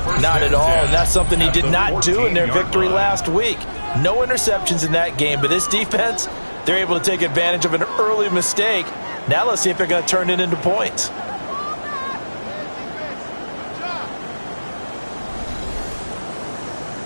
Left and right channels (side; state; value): both; inverted; correlation -1.00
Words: Not at all, and that's something he did not do in their victory last week. No interceptions in that game, but this defense, they're able to take advantage of an early mistake. Now let's see if they're going to turn it into points.